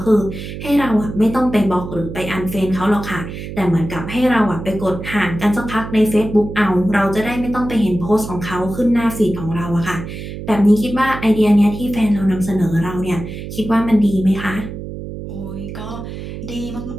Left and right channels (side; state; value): right; noise; hum, 9 dB below the sound